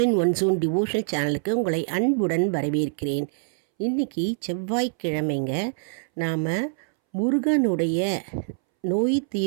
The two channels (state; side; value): silent; left; 62 dB below the other